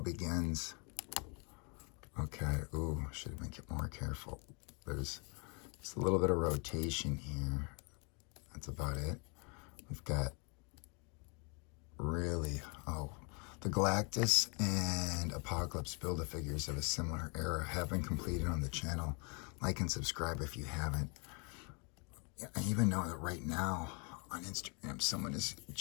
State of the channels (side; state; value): right; quieter; 34.3 dB